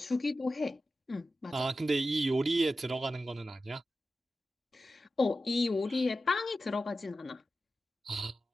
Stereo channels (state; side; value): normal; both; correlation 0.92